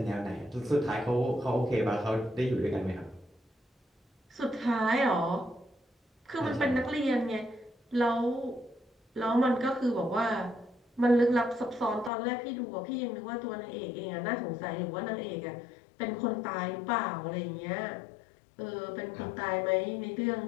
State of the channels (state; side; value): drops out; right; at 12.1 s